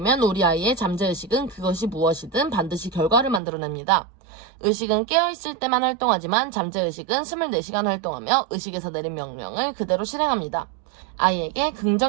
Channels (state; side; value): drops out; left; at 3.4 s